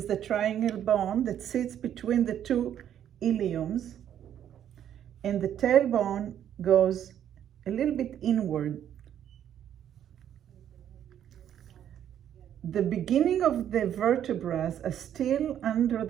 the triangle bone that sits between the two iliums, and the tailbone goes a little bit inward. The beginning of the vertebrae are still under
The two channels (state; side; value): quieter; left; 10.1 dB